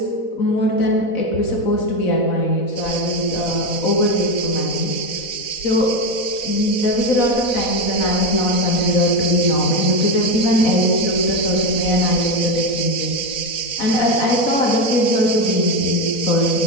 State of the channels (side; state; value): right; late; 4.1 ms